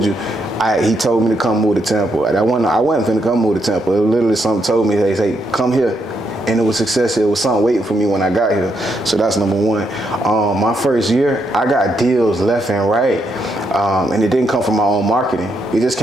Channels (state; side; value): normal; both; correlation 0.78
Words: you, he told me to come move to Tampa. And I wasn't finna come move to Tampa. Literally, something told me, hey, come here. and it was success. It was something waiting for me when I got here. So that's number one. My first year, I got deals left and right, and it didn't come from my own marketing. It just